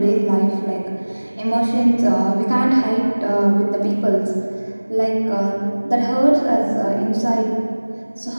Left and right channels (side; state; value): both; inverted; correlation -1.00